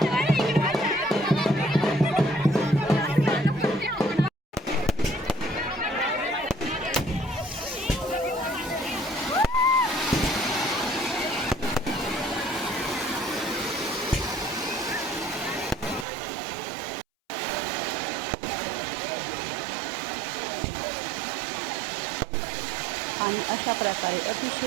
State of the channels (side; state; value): left; drops out; at 16.1 s